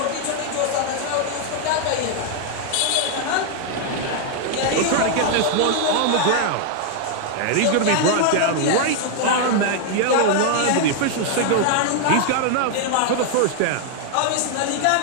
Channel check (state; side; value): different; both; correlation 0.00